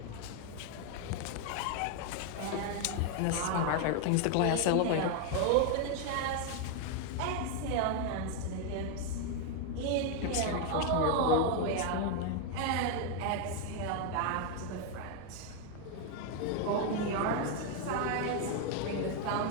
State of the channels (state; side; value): different; both; correlation 0.01